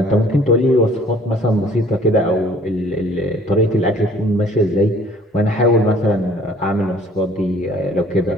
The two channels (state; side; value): normal; both; correlation 0.55